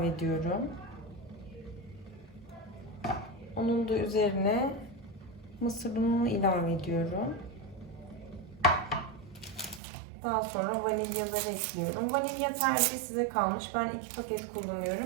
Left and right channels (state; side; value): drops out; left; at 9.8 s